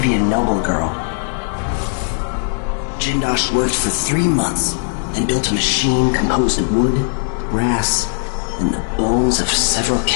noble girl. Jindosh worked for 3 months and built a machine composed of wood, brass, and the bones of several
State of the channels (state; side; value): silent; right; digital silence